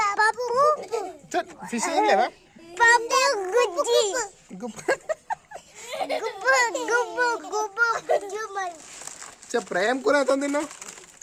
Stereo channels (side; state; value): both; identical; correlation 1.00